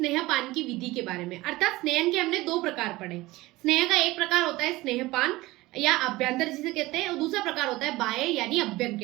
की विधि के बारे में। अर्थात स्नेहन के हमने दो प्रकार पढ़े। स्नेह का एक प्रकार होता है स्नेहपान या अभ्यंतर जिसे कहते हैं, और दूसरा प्रकार होता है बाह्य यानी अभ्यंग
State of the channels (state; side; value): quieter; left; 19.5 dB